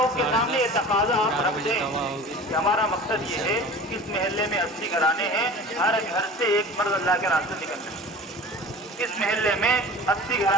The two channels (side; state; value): both; normal; correlation 0.39